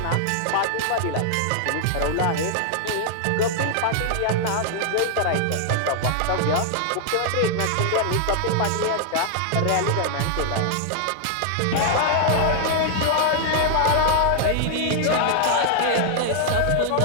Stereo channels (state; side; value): different; both; correlation 0.00